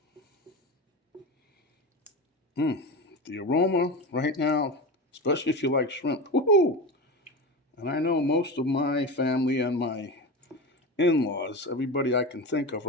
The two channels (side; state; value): both; normal; correlation 0.24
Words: The aroma right now, especially if you like shrimp. Woohoo! And I know most of my family and my in-laws, everybody I can think of